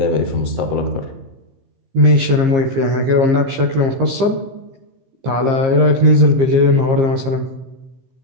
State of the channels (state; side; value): late; left; 15 ms